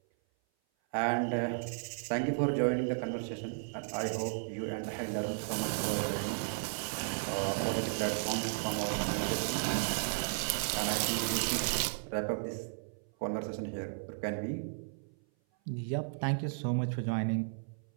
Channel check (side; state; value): left; silent; 55 dB below the other